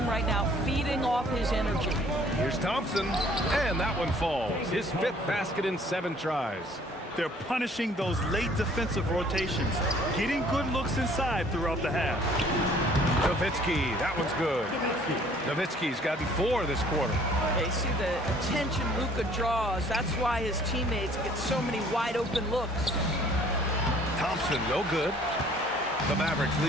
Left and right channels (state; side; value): normal; both; correlation 0.57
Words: right now feeding off his energy. Here's Thompson, and that one falls. His 5th basket in 7 tries. They're punishing those late defensive rotations, getting good looks inside throughout the half. Nowitzki, that one's good. Nowitzki's gotten 4 this quarter. They see the attention Luka draws. That's why his teammates get so many wide open looks. Thompson, no good. The Mavericks